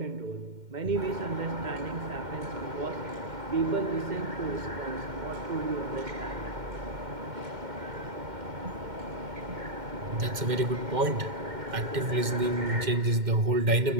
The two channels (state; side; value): late; left; 2.1 ms